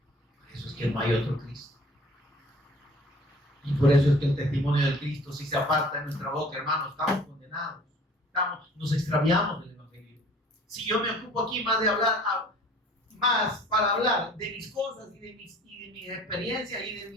Por eso es que no hay otro Cristo. Y por eso es que el testimonio del Cristo, si se aparta de nuestra boca, hermanos, estamos condenados. Nos extraviamos del Evangelio. Si yo me ocupo aquí más para hablar de mis cosas y de mis experiencias y de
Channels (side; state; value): both; normal; correlation 0.51